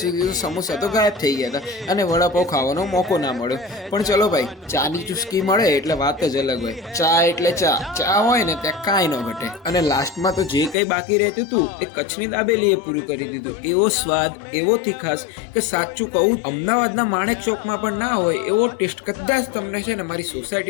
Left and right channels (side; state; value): right; drops out; at 10.8 s